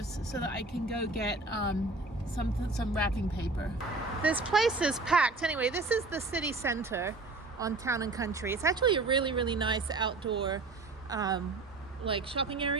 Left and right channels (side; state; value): left; quieter; 3.3 dB